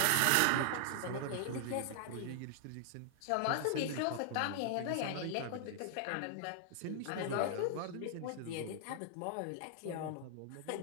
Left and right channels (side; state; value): both; different; correlation 0.00